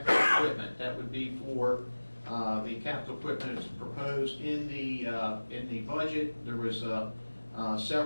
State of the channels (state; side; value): inverted; both; correlation -1.00